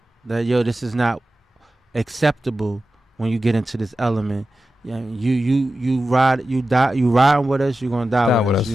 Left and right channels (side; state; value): both; normal; correlation 0.93